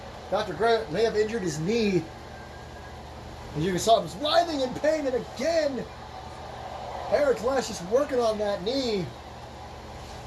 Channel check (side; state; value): both; identical; correlation 1.00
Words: Dr. Grant may have injured his knee. As you saw him was writhing in pain, and again, Eric Lass just working on that knee.